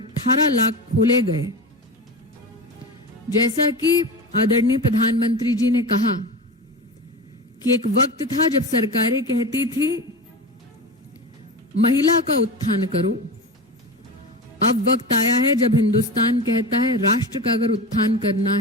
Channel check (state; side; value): normal; both; correlation 0.26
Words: लाख खोले गए। जैसा कि आदरणीय प्रधानमंत्री जी ने कहा कि एक वक्त था जब सरकारें कहती थी महिला का उत्थान करो। अब वक्त आया है जब हिंदुस्तान कहता है राष्ट्र का अगर उत्थान करना